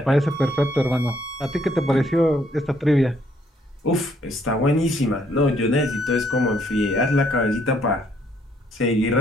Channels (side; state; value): both; normal; correlation 0.68